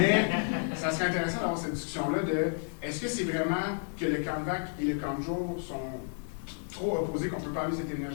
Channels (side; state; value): right; silent; digital silence